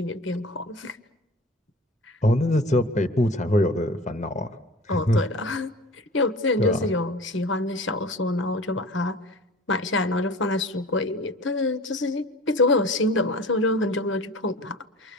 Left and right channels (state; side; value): normal; both; correlation 0.39